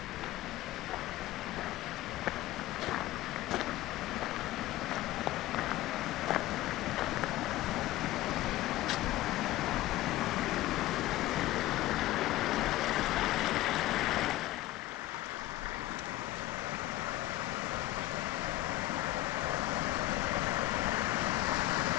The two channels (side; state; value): right; quieter; 16.1 dB